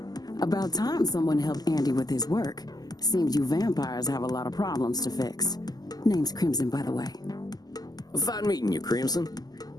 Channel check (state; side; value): late; right; 0.19 ms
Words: About time someone helped Andy with his work. Seems you vampires have a lot of problems to fix. Name's Crimson, by the way. Fine meeting you, Crimson.